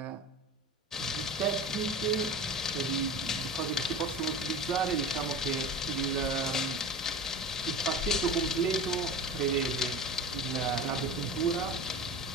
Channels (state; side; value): normal; both; correlation 0.33